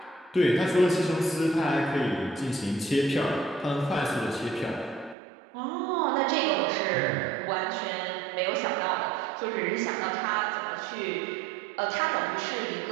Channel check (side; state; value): left; drops out; at 5.2 s